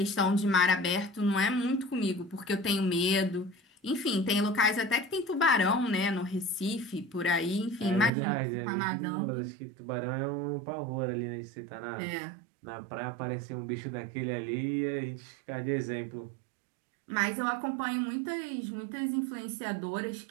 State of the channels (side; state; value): left; drops out; at 8.1 s